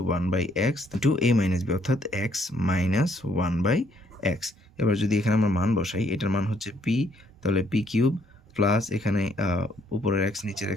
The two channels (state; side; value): normal; both; correlation 0.68